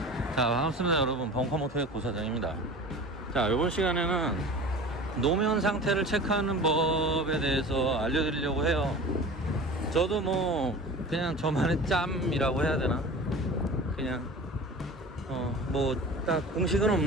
자, 반갑습니다 여러분. 벙커모터의 고사장입니다. 자, 이번 시간에는 노면 상태를 체크하는 법에 대해서 알려드리려고 해요. 저도 뭐 그냥 저만의 짬이라고 해야 되나, 그냥 뭐 딱 공식은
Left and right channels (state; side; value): normal; both; correlation 0.37